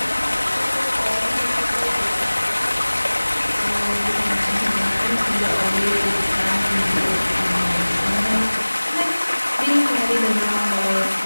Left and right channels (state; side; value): inverted; both; correlation -1.00